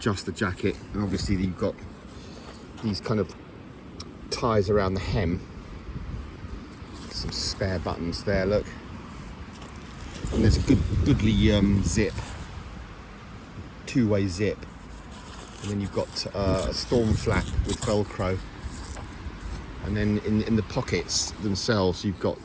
the jacket, and obviously you've got these kind of ties around the hem. Some spare buttons there, look. And there's a goodly zip, two-way zip, and then you've got a storm flap with Velcro, and then in the pockets themselves you've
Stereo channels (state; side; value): identical; both; correlation 1.00